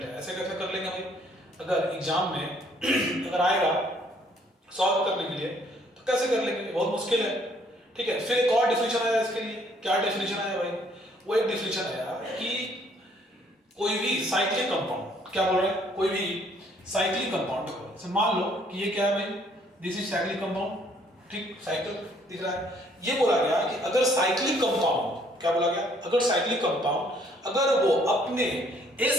है, ऐसे कैसे कर लेंगे भाई। अगर एग्जाम में अगर आएगा सॉल्व करने के लिए तो कैसे कर लेंगे, बहुत मुश्किल है, ठीक है। फिर एक और डिफिनेशन आया इसके लिए। क्या डिफिनेशन आया भाई, वो एक डिफिनेशन आया कि कोई भी साइक्लिक कंपाउंड, क्या बोल रहे हैं कोई भी साइक्लिक कंपाउंड, मान लो कि ये क्या है भाई दिस इज साइक्लिक कंपाउंड, ठीक साइकिल दिख रहा है। ये बोला गया कि अगर साइक्लिक कंपाउंड, क्या बोला गया अगर साइक्लिक कंपाउंड अगर वो अपने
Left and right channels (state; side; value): normal; both; correlation 0.64